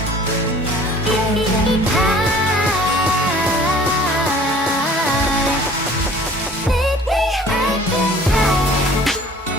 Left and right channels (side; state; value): both; normal; correlation 0.49